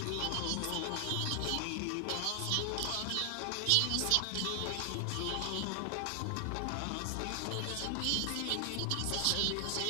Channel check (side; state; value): both; different; correlation 0.00